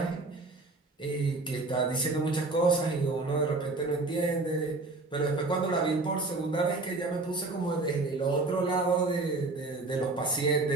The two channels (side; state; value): left; quieter; 3.3 dB